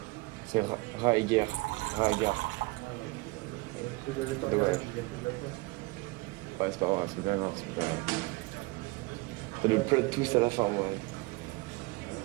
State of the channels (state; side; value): quieter; left; 23.8 dB